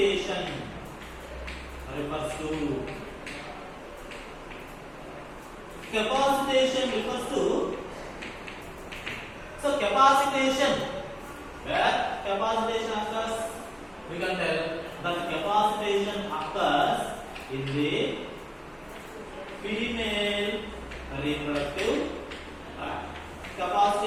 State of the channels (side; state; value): both; identical; correlation 1.00